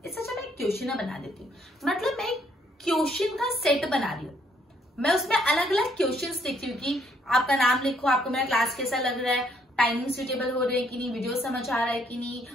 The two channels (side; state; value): both; normal; correlation 0.68